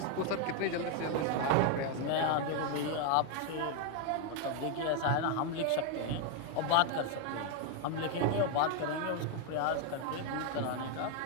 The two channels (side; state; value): both; different; correlation 0.01